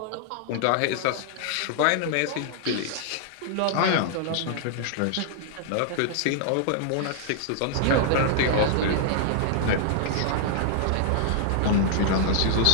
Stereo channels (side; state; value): both; different; correlation -0.01